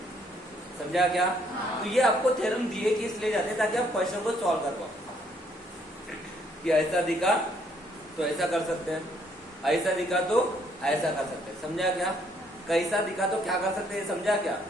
समझा क्या? तो ये आपको थ्योरम दिए कि इसलिए जाते हैं ताकि आप क्वेश्चन को सॉल्व कर पाओ। कि ऐसा दिखा तो ऐसा कर सकते हैं, ऐसा दिखा तो ऐसा कर सकते हैं। समझा क्या? कैसा दिखा तो क्या कर सकते हैं, समझा क्या?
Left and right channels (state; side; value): normal; both; correlation 0.67